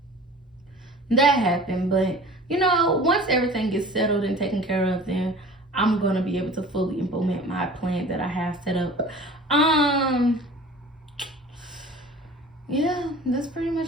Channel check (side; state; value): both; normal; correlation 0.42